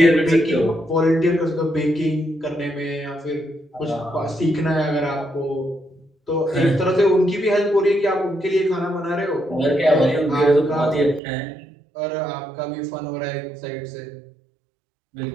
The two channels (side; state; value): left; drops out; at 11.2 s